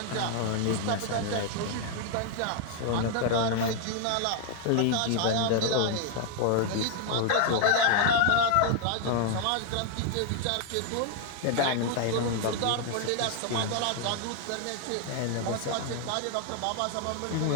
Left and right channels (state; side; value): different; both; correlation 0.00